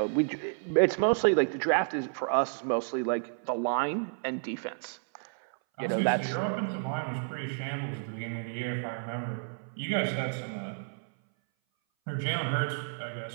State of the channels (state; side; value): silent; left; 57 dB below the other